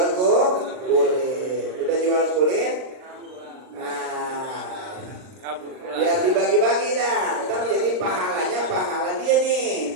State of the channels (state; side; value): late; left; 39 ms